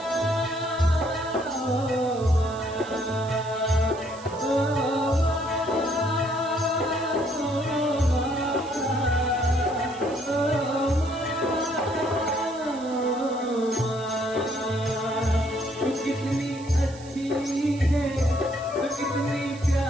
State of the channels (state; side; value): noise; right; hiss, 20 dB below the sound